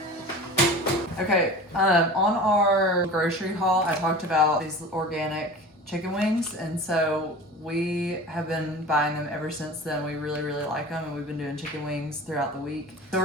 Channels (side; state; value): both; normal; correlation 0.37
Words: Okay, on our grocery haul, I talked about these organic chicken wings, and so we have been buying them ever since then. We really, really like them, and we've been doing chicken wings throughout the week. So